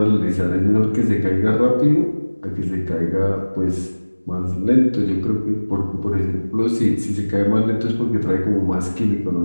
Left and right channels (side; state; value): both; inverted; correlation -1.00